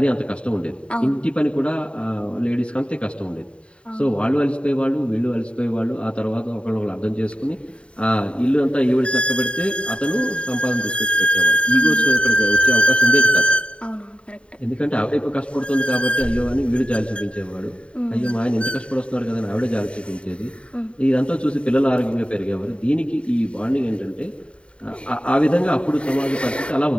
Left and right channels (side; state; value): right; late; 0.058 ms